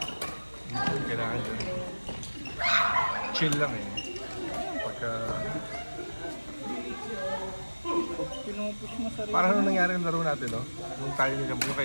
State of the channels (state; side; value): inverted; both; correlation -1.00